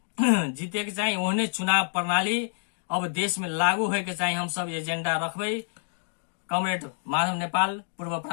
जीते के चाहिए, ओहने चुनाव प्रणाली अब देश में लागू होए के चाहिए। हम सब एजेंडा रखबे कमरेड माधव नेपाल पूर्व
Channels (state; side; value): silent; right; digital silence